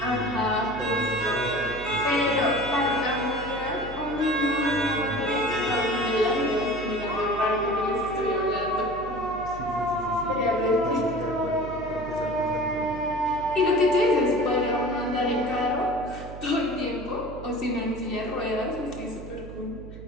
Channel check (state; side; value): noise; right; hum, 13 dB below the sound